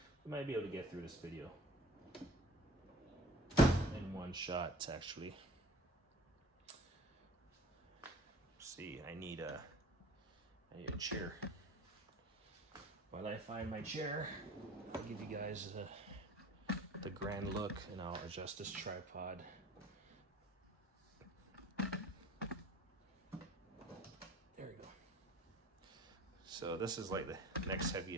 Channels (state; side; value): normal; both; correlation 0.45